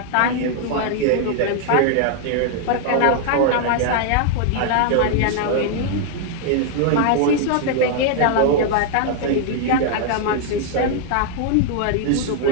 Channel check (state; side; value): different; both; correlation 0.00